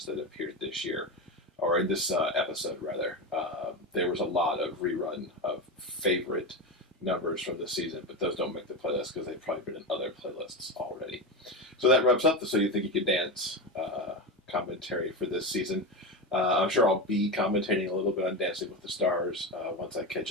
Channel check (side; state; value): both; normal; correlation 0.18